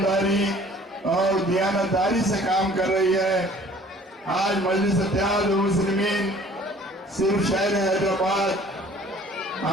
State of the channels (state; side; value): normal; both; correlation 0.52